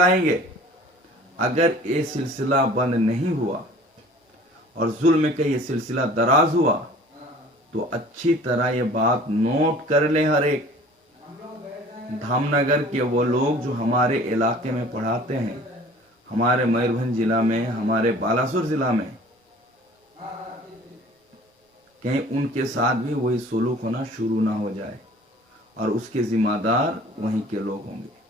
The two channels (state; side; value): normal; both; correlation 0.47